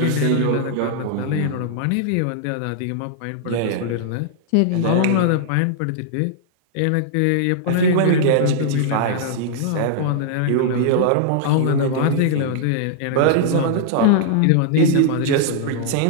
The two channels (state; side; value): different; both; correlation -0.01